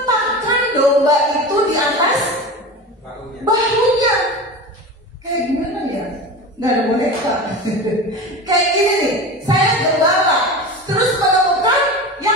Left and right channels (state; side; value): normal; both; correlation 0.29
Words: domba itu di atas bahunya. Kayak gimana ya? Nggak ada boneka. Kayak gini nih, saya gembala, terus menemukan